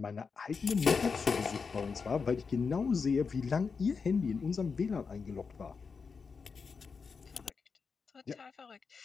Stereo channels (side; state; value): right; quieter; 5.3 dB